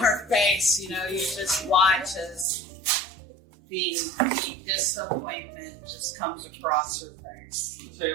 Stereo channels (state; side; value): drops out; left; at 2.5 s